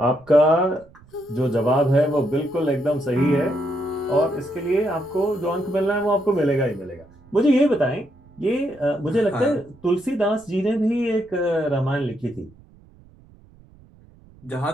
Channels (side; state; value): right; noise; rumble, 26 dB below the sound